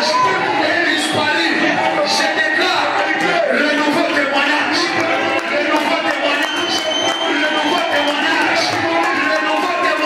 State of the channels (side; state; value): both; identical; correlation 1.00